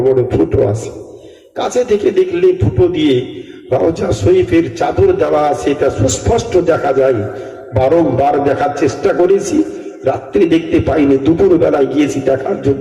বড় ফুটো আছে, কাছে থেকে দেখলে ফুটো দিয়ে রওজা শরীফের চাদর দেওয়া আছে, এটা সুস্পষ্ট দেখা যায়। বারংবার দেখার চেষ্টা করেছি, রাত্রি দেখতে পাইনি, দুপুর বেলায় গিয়েছি দেখার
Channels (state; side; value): identical; both; correlation 1.00